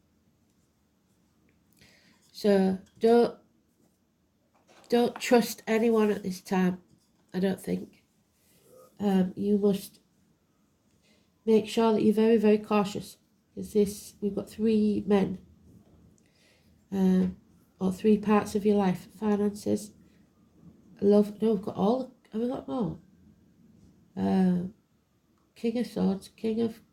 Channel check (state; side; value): identical; both; correlation 1.00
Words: So don't trust anyone at this time, I don't think. You must make sure that you're very, very cautious, because we've got 3 men, or 3 parts of your life: finances, love. No, we've got all. Have we got more? King of Swords, King of